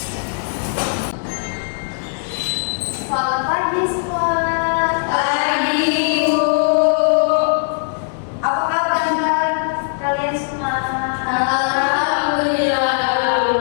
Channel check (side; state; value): right; silent; digital silence